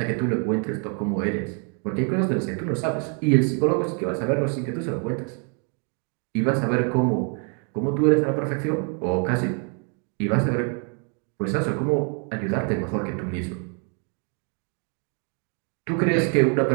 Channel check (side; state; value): left; quieter; 39.5 dB